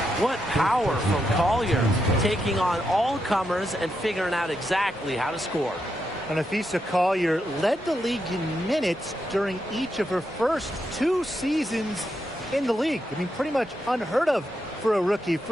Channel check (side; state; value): both; normal; correlation 0.83